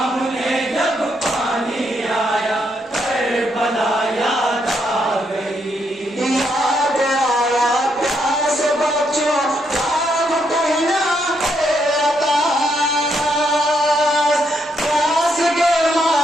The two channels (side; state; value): both; normal; correlation 0.76